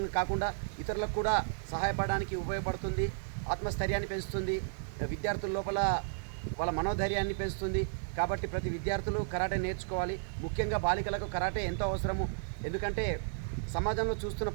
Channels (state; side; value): silent; left; 55 dB below the other